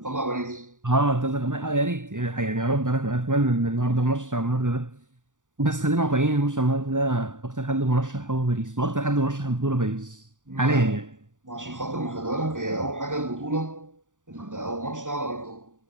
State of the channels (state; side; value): late; left; 0.87 ms